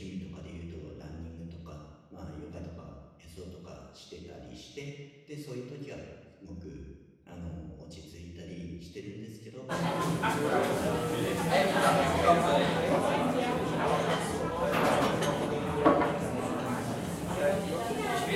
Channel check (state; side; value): identical; both; correlation 1.00